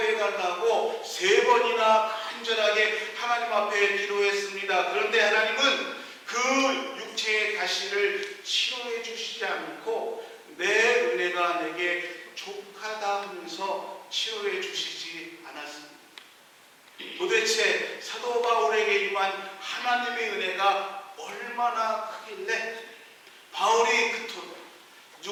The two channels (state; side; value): identical; both; correlation 1.00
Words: 달라고 3번이나 간절하게 하나님 앞에 기도했습니다. 그런데 하나님은 그 육체의 가시를 치료해 주시지 않고 내 은혜가 내게 족하다 하면서 치료해 주시지 않았습니다. 도대체 사도 바울에게 임한 하나님의 은혜가 얼마나 크길래 바울이 그토록